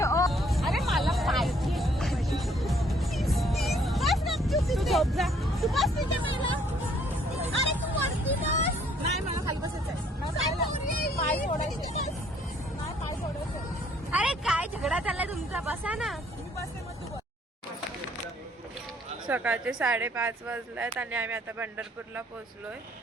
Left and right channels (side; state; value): both; normal; correlation 0.63